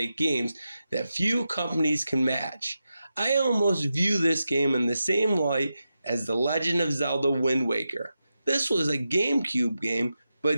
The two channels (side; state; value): both; inverted; correlation -0.90